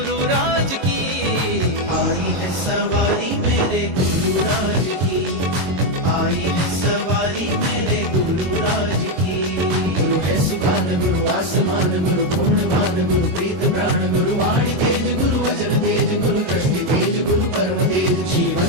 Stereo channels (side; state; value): left; late; 22 ms